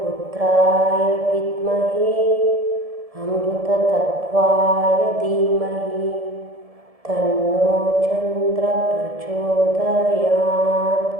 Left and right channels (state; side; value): late; left; 1.7 ms